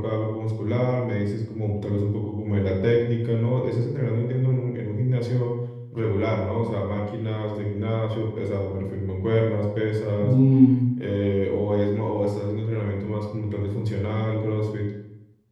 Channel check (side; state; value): both; identical; correlation 1.00